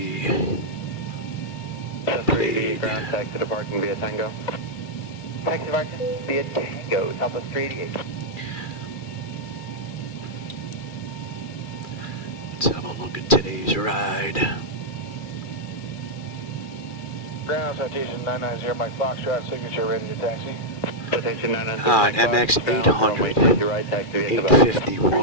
played. Ground taxi departing via Tango. Taxi departing via Tango, Southwest 388. Let's have a look at today's ride. Ground citation 990, Mike Foxtrot, signature ready to taxi. Citation 990. An MX 800,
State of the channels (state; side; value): late; right; 2.4 ms